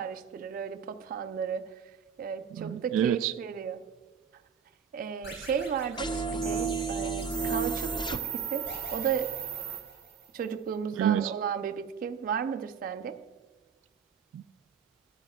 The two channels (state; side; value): quieter; left; 6.9 dB